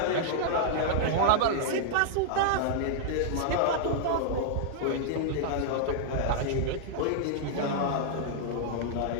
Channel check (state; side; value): different; both; correlation -0.01